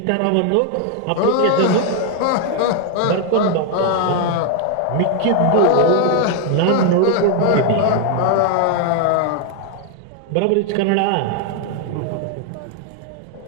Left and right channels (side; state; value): both; different; correlation 0.00